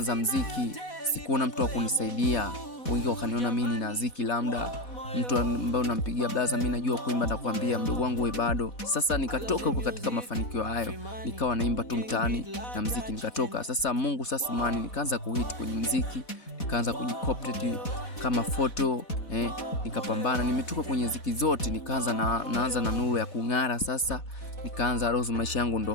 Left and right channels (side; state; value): right; late; 4.1 ms